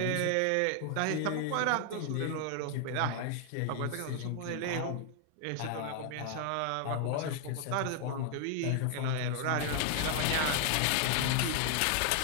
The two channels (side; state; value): both; different; correlation 0.00